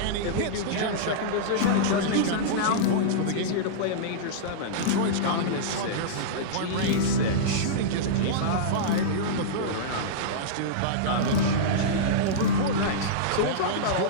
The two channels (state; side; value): different; both; correlation -0.03